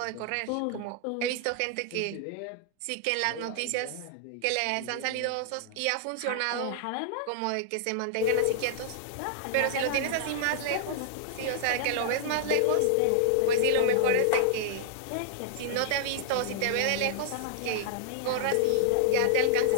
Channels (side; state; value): both; different; correlation -0.01